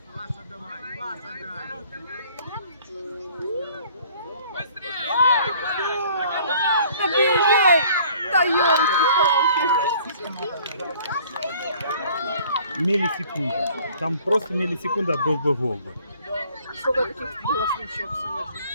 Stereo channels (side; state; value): both; inverted; correlation -0.55